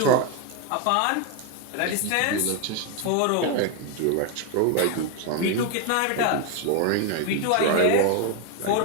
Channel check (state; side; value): different; both; correlation 0.01